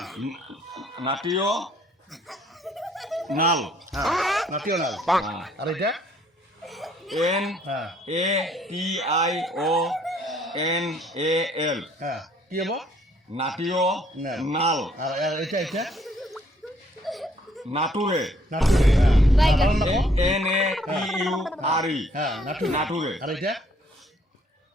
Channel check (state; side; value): normal; both; correlation 0.64